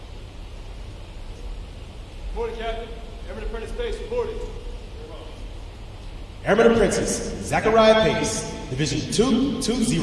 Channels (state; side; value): identical; both; correlation 1.00